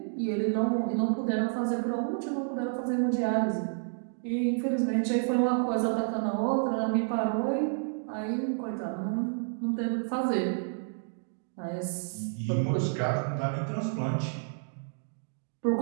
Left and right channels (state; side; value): silent; left; digital silence